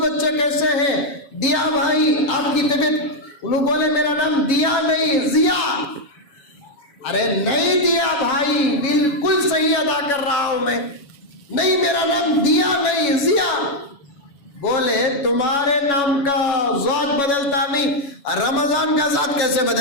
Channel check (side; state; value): right; late; 7.1 ms